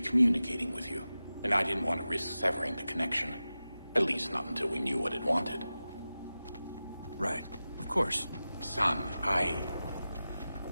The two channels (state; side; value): inverted; both; correlation -0.95